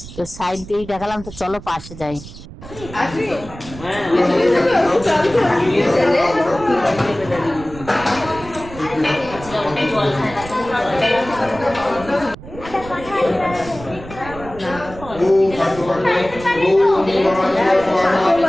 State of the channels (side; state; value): right; noise; rumble, 15 dB below the sound